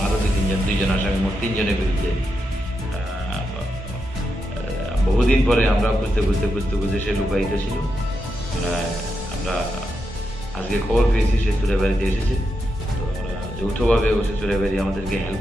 আরো দুইজন আসামি, মোট 3 জনের বিরুদ্ধে বহুদিন পরে আমরা খুঁজতে সে লুকায়িত ছিল। আমরা আজকে খবর পেয়েছি সে চুরাইবাড়িতে এসেছে। তো আমরা যৌথভাবে সে চুরাইবাড়ি আমাদেরকে হেল্প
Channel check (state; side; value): normal; both; correlation 0.85